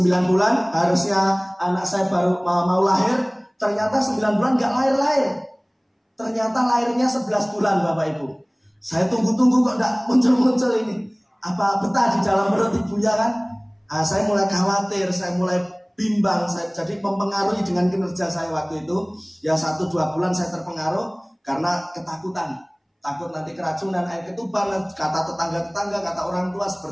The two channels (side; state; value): both; identical; correlation 1.00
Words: bulan, harusnya anak saya baru mau lahir. Ternyata 9 bulan gak lahir-lahir. Ternyata lahirnya 11 bulan Bapak Ibu. Saya tunggu-tunggu kok gak muncul-muncul ini. Apa betah di dalam perut ibunya kan? Saya mulai khawatir, saya mulai bimbang. Jadi mempengaruhi dengan kinerja saya waktu itu. Ya 1-2 bulan saya terpengaruh karena ketakutan. Takut nanti keracunan, air ketuban, kata tetangga-tetangga, kata orang tua